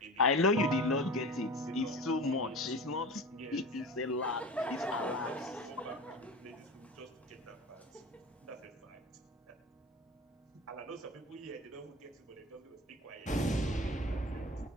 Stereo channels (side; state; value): both; normal; correlation 0.32